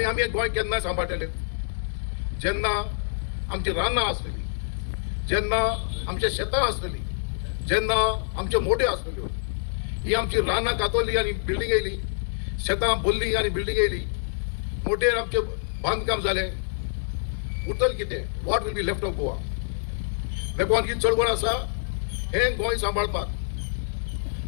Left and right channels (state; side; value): silent; right; digital silence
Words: आमी हे गोंय केन्ना सांबाळटले जेन्ना आमची रानां आसलेली, जेन्ना आमचे शेतां आसलेली, जेन्ना आमच्यो मोट्यो आसलेल्यो. ही आमची रानां कातरली आनी बिल्डींग येयली, शेतां भरली आनी बिल्डींग येयली, मोटेर आमचें बांदकाम जालें. उरतलें कितें? What will be left of Goa? देखून ही चळवळ आसा हे गोंय सांबाळपाक.